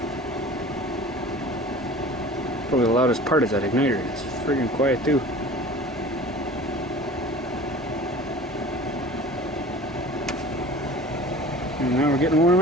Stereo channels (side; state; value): both; normal; correlation 0.42